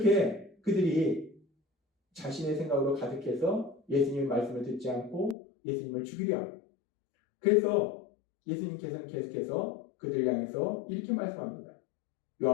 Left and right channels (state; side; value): drops out; right; at 5.4 s